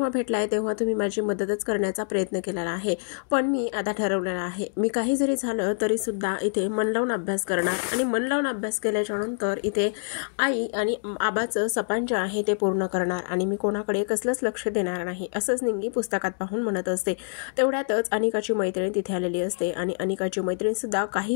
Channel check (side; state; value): right; silent; digital silence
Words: भेटलाय तेव्हा तुम्ही माझी मदतच करण्याचा प्रयत्न केलेला आहे. पण मी आता ठरवलेलं आहे, मी काही जरी झालं तरीसुद्धा इथे मन लावून अभ्यास करणार आणि मन लावून अभ्यास केल्याच्या नंतर इथे आई आणि आबाचं सपान जे आहे ते पूर्ण करणार आणि मी कोणाकडे कसलंच लक्ष देणार नाही, असंच निंगी पुस्तकात पाहून म्हणत असते. तेवढ्यातच अनिकाची मैत्रीण तिथे आलेली असते आणि अनिकाची मैत्रीण सुद्धा